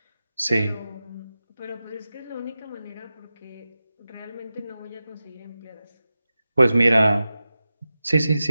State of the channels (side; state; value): both; inverted; correlation -0.93